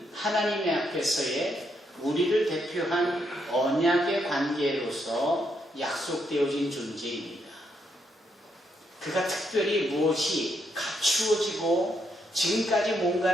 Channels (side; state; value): both; normal; correlation 0.77